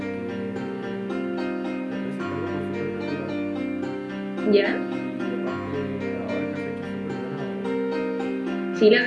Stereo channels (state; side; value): identical; both; correlation 1.00